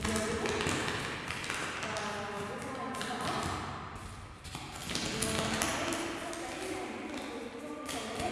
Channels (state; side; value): identical; both; correlation 1.00